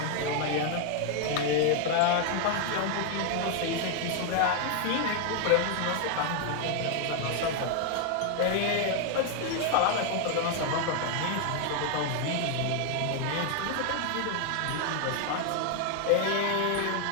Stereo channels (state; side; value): different; both; correlation 0.00